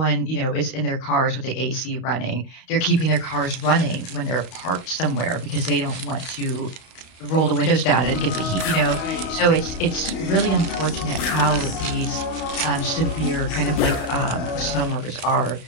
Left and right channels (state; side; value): late; right; 32 ms